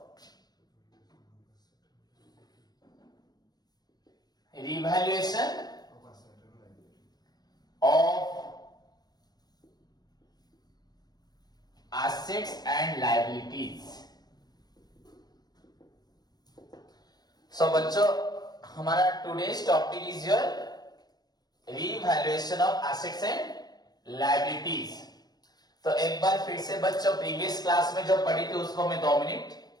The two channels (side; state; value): right; late; 0.19 ms